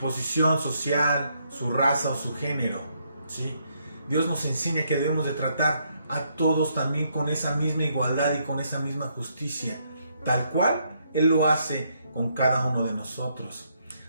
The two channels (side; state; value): both; inverted; correlation -0.74